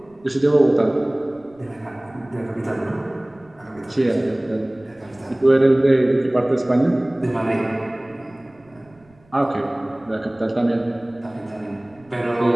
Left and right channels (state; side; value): noise; right; rumble, 30 dB below the sound